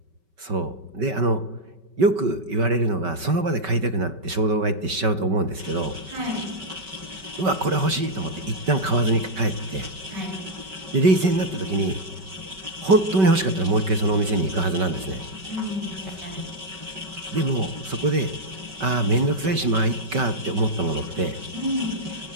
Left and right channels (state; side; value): late; left; 5.2 ms